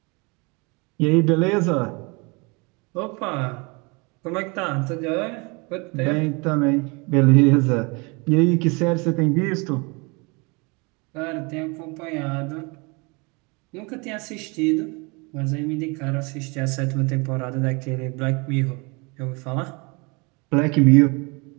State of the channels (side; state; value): left; quieter; 29.2 dB